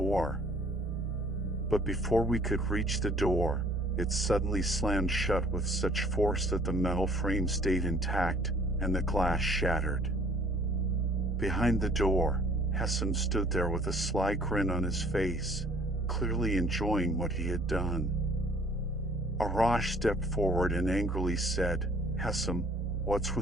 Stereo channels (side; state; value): both; normal; correlation 0.57